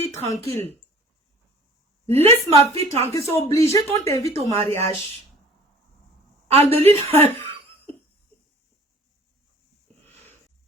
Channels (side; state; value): both; normal; correlation 0.48